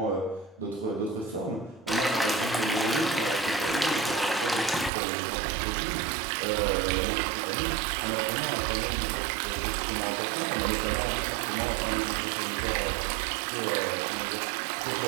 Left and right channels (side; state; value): left; drops out; at 4.9 s